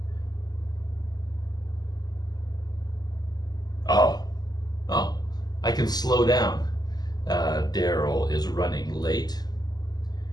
Oh, I can slow down. Daryl is running late.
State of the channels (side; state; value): right; late; 0.20 ms